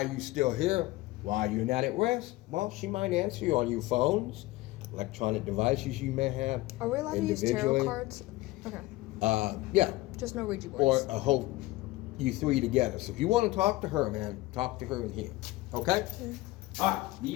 are you still here? Why are you not at rest? Well, she might answer you on your phones, electronic devices you may have. Are we allowed to use tarot cards? Okay. Yeah. Just no Ouija boards. Or a whole, you three together. So if you want to talk to her, man, talk to her in here. Okay? Yeah. All right.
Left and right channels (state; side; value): quieter; right; 19.1 dB